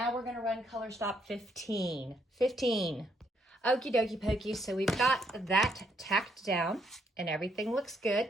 we're going to run color stop 15. 15. Okie dokie pokey, so we've got that tacked down and everything looks good.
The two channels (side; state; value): both; normal; correlation 0.72